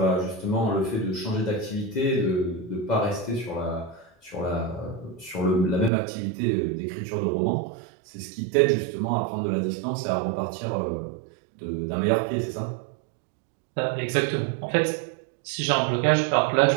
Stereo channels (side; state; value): left; drops out; at 5.9 s